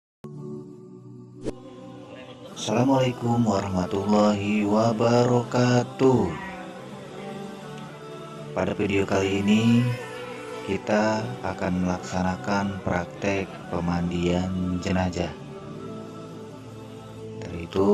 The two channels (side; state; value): both; identical; correlation 1.00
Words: warahmatullahi wabarakatuh. Pada video kali ini kita akan melaksanakan praktek pemandian jenazah. Dari